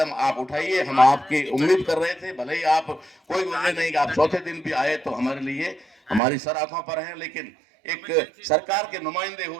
आप उठाइए। हम आपकी उम्मीद कर रहे थे, भले ही आप कोई वजह नहीं कि आप चौथे दिन भी आए तो हमारे लिए हमारी सर आंखों पर हैं, लेकिन एक सरकार के नुमाइंदे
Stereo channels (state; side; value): drops out; left; at 6.2 s